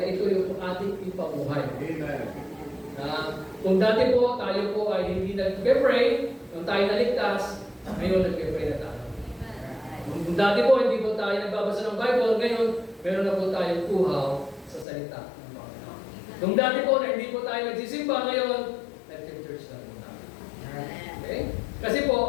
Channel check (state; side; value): drops out; right; at 14.9 s